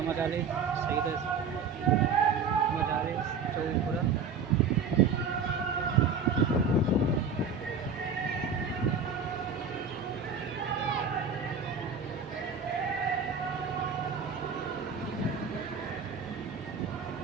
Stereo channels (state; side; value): quieter; left; 5.4 dB